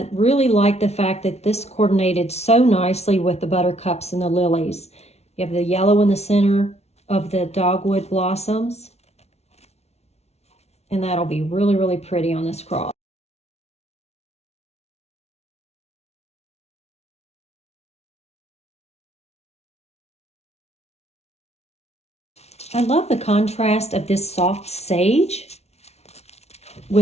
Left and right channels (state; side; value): late; right; 0.31 ms